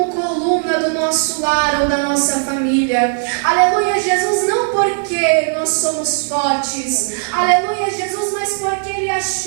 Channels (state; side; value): silent; left; digital silence